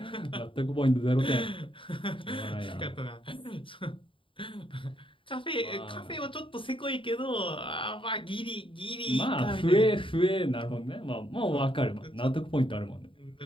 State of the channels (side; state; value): right; late; 0.25 ms